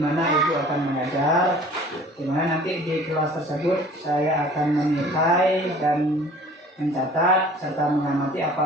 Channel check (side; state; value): both; normal; correlation 0.48